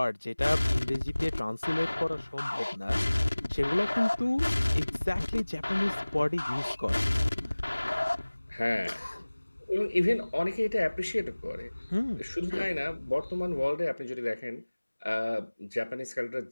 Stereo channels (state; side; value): inverted; both; correlation -1.00